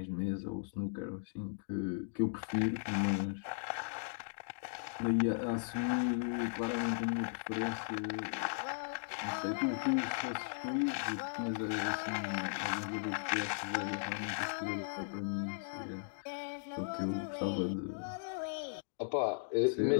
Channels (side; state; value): right; silent; digital silence